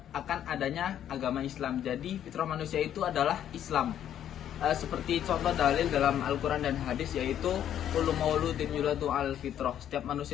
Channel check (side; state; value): right; quieter; 10.4 dB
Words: adanya agama Islam. Jadi fitrah manusia itu adalah Islam. Seperti contoh dalil dalam Al-Quran dan hadis, yaitu kullu mauludin yuladu al fitrah. Setiap